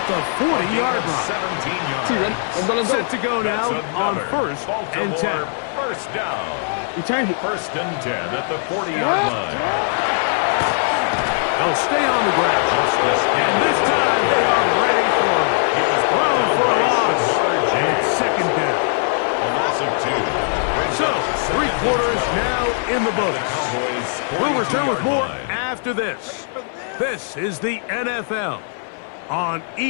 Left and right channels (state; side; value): silent; right; digital silence